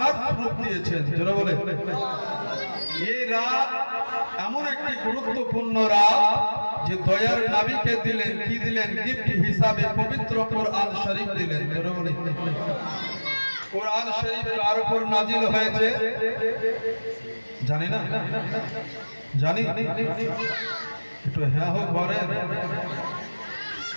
স্বরূপ দিয়েছেন। যারা বলে এই রাত এমন একটি গুরুত্বপূর্ণ রাত যে দয়ার নবীকে দিলেন, কি দিলেন? গিফট হিসাবে পবিত্র কোরআন শরীফ দিলেন। যারা বলে কোরআন শরীফ কার উপর নাজিল হয়েছে জানি না? জানি? একটু হ্যাঁ হোক বলেন।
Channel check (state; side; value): inverted; both; correlation -1.00